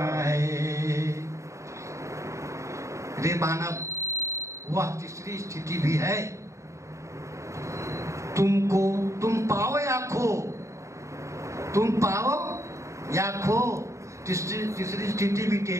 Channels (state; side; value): late; left; 0.14 ms